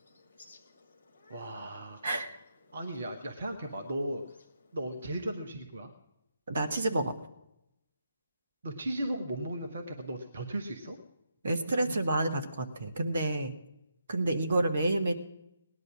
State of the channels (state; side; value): inverted; both; correlation -0.81